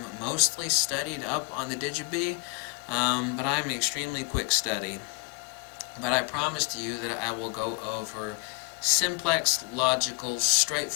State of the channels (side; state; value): right; quieter; 32.4 dB